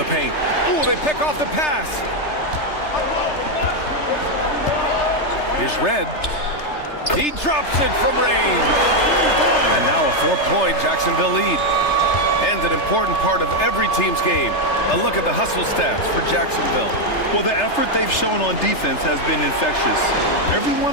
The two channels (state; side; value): late; right; 3.3 ms